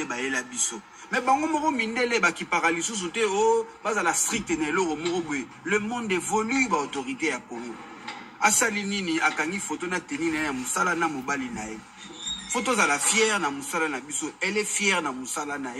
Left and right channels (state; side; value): identical; both; correlation 1.00